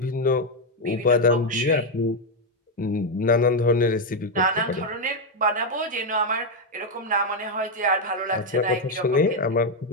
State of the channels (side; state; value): both; normal; correlation 0.03